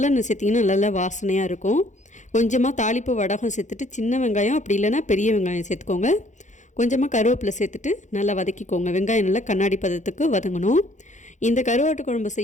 சேர்த்திங்கன்னா நல்லா வாசனையாக இருக்கும். கொஞ்சமாக தாளிப்பு வடகம் சேர்த்துட்டு சின்ன வெங்காயம் அப்படி இல்லைன்னா பெரிய வெங்காயம் சேர்த்துக்கோங்க. கொஞ்சமாக கருவேப்பிலை சேர்த்துட்டு நல்லா வதக்கிக்கோங்க. வெங்காயம் நல்லா கண்ணாடி பதத்துக்கு வதங்கணும். இந்த கருவாட்டு குழம்பு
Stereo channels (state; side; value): late; right; 0.35 ms